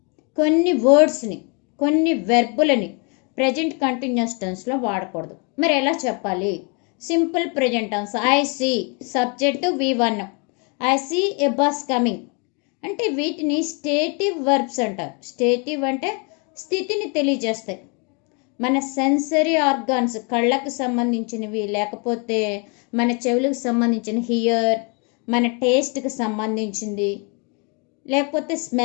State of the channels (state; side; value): quieter; right; 34.3 dB